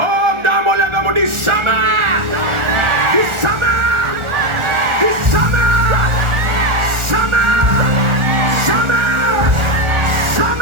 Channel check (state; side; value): late; left; 1.4 ms